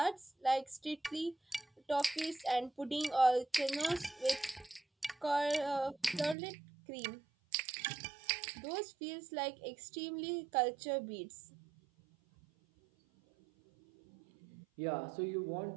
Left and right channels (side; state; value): left; drops out; at 6.4 s